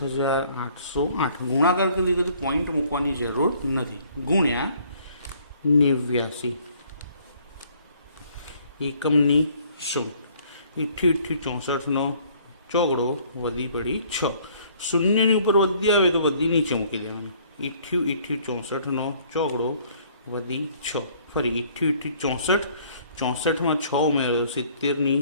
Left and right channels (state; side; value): inverted; both; correlation -0.59